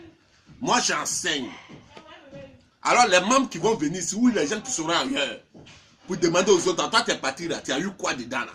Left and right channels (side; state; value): both; identical; correlation 1.00